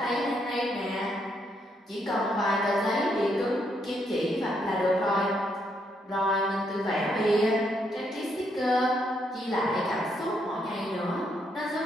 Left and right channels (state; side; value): normal; both; correlation 0.75